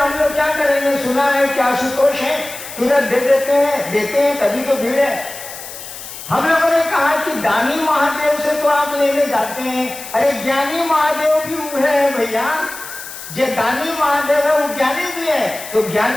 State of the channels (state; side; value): noise; left; hiss, 12 dB below the sound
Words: लोग क्या करेंगे? सुना है कि आशुतोष है, तुरंत दे देते हैं, तभी तो भीड़ है। हम लोगों ने कहा कि दानी महादेव से तो आप लेने जाते हैं, अरे ज्ञानी महादेव भी वो है भैया, जो दानी महादेव है वो ज्ञानी भी है, तो